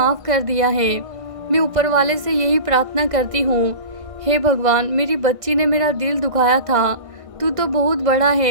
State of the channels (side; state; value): left; late; 1.5 ms